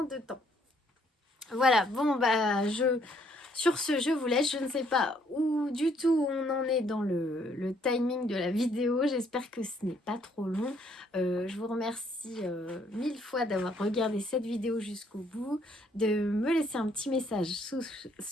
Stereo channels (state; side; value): normal; both; correlation 0.67